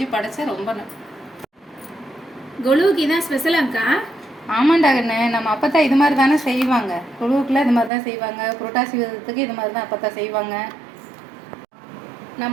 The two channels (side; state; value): left; drops out; at 7.9 s